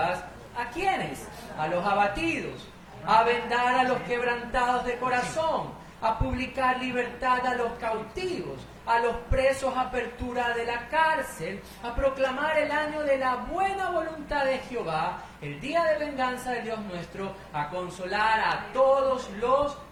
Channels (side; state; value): both; identical; correlation 1.00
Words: ¿A quiénes? A los abatidos, a vendar a los quebrantados de corazón, a publicar libertad a los cautivos, a los presos apertura de la cárcel, a proclamar el año de la buena voluntad de Jehová, el día de venganza de Dios nuestro, a consolar a todos los